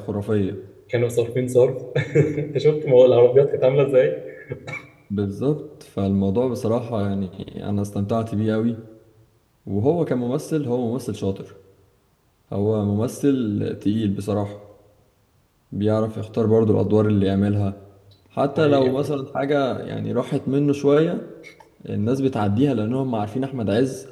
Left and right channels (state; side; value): identical; both; correlation 1.00